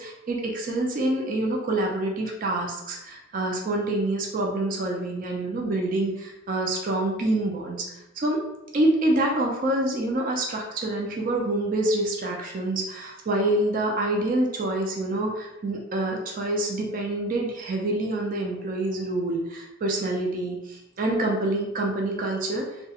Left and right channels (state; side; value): normal; both; correlation 0.43